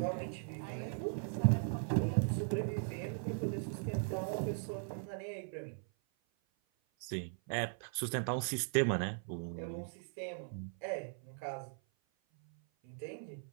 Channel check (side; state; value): left; silent; 52 dB below the other